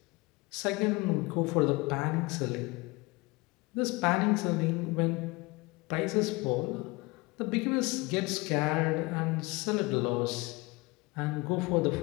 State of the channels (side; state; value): right; quieter; 24.3 dB